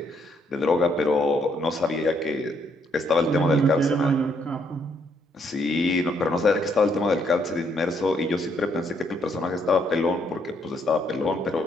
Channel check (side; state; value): both; normal; correlation 0.71